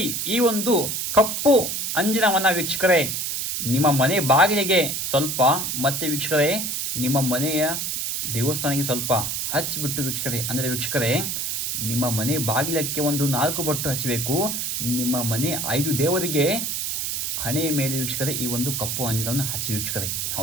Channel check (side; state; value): right; noise; hiss, 2 dB below the sound